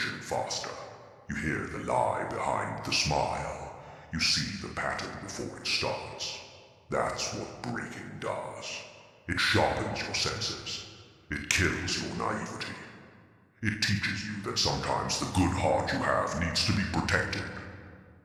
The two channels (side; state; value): both; identical; correlation 1.00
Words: faster. You hear the lie behind the smile. You see the pattern before it starts. That's what breaking does. It sharpens your senses. It kills your naivety. It teaches you that sometimes the good heart you have needs to be protected,